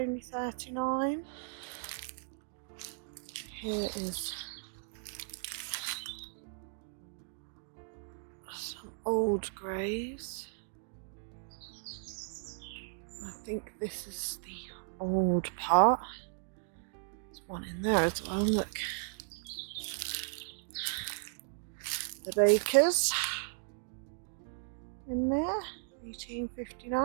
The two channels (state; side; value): silent; left; digital silence